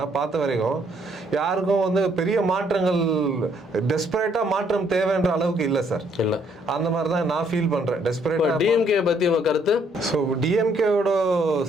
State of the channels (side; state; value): both; normal; correlation 0.68